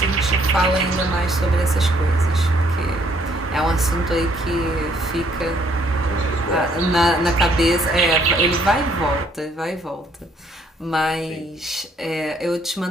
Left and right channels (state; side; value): normal; both; correlation 0.66